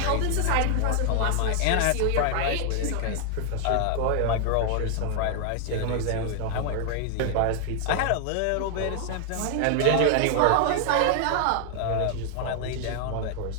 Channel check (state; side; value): different; both; correlation 0.00